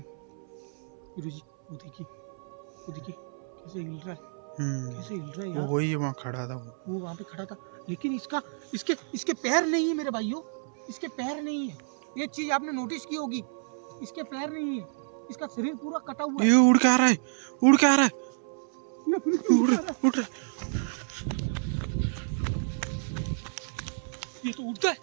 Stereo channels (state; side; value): silent; left; 58 dB below the other